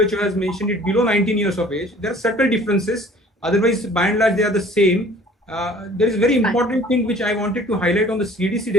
WHO has mentioned it below 19 years of age. There are subtle differences. Otherwise, by and large, they are the same. There is a very important thing which I wanted to highlight on the CDC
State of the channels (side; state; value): both; normal; correlation 0.51